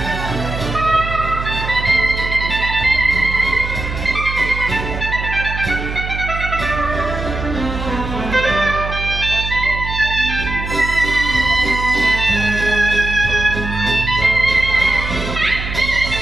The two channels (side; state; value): right; noise; hum, 6 dB below the sound